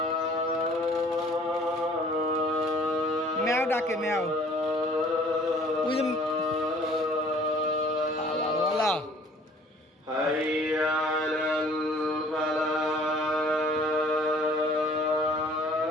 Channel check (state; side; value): normal; both; correlation 0.54